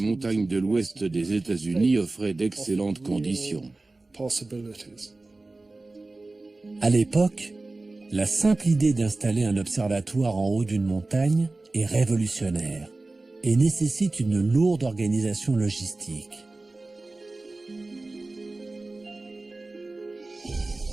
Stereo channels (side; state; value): left; quieter; 3.2 dB